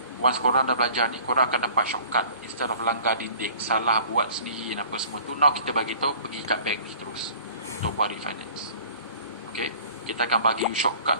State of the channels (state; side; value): inverted; both; correlation -0.49